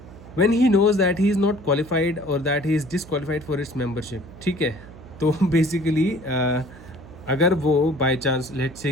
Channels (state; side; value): noise; right; hum, 18 dB below the sound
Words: when he knows that he is not qualified or that he is disqualified for its membership, ठीक है। तो बेसिकली अगर वो बाय चांस लेट